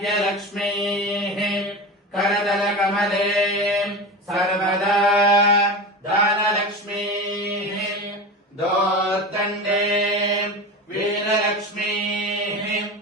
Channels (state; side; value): normal; both; correlation 0.26